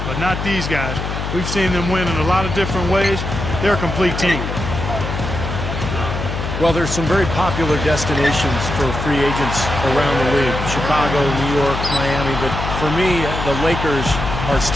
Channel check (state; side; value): noise; left; hum, 4 dB below the sound